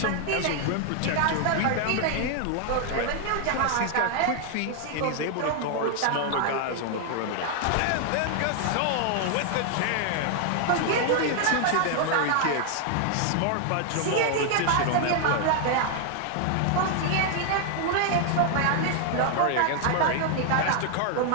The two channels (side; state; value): both; different; correlation 0.00